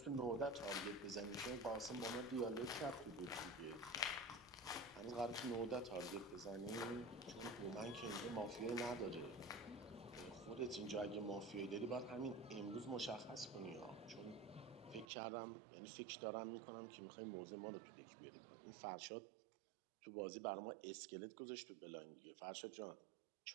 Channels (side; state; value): left; drops out; at 15.1 s